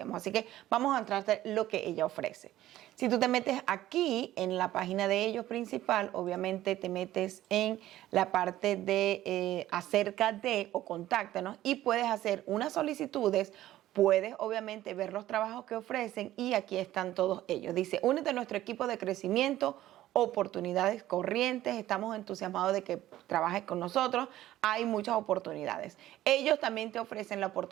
Así que vamos a entrarte lo que ella ofrece. Si tú te metes aquí en la página de ellos principal, obviamente te metes en la parte de acerca de o contáctanos y puedes hacer unas solicitudes, puedes obviamente ver los trabajos que ofrecen y aquí están todos ellos. Dice, únete a nuestro equipo de crecimiento, oportunidades corrientes, estamos entusiasmados de que trabajes con nosotros, hay muchas oportunidades. Ellos también te ofrecen la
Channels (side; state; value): left; quieter; 14.3 dB